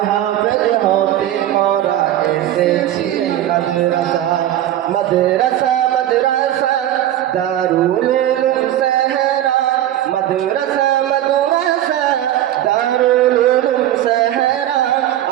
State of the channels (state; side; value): quieter; left; 12.6 dB